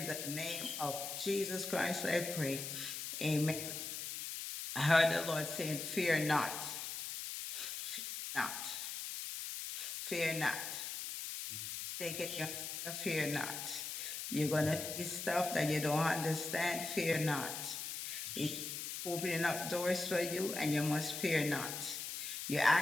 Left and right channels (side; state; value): left; noise; hiss, 5 dB below the sound